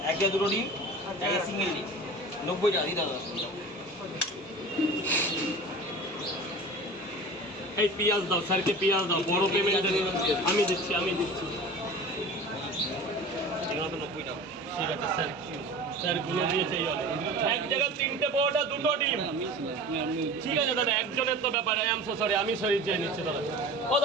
এক জায়গায় দুটো ডিম, এক জায়গায় সিঙ্গেল ডিম, 90 টাকা দিতে হবে। এই পিঁয়াজ দাও, স্যারকে পিঁয়াজ দাও। বড় পেমেন্ট আমি দিচ্ছি, আমি দিচ্ছি। এগুলো তো 90 টাকা। ঠিক আছে স্যার, স্যার গুলো দিয়েছে এই অনেক। এক জায়গায় তিনটে পরোটা, দুটো ডিম। ঠিক আছে দাদা, একজনের তো ব্যাপার। আই এম সো সরি, আমি সরি চেয়ে নিচ্ছি দাদা। ও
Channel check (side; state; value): both; normal; correlation 0.37